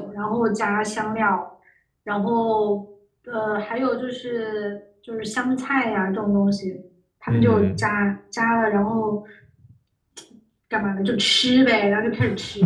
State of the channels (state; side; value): identical; both; correlation 1.00